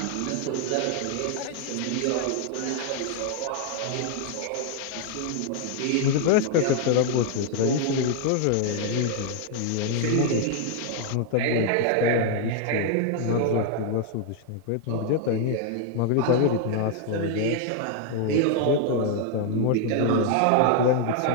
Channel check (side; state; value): both; different; correlation 0.00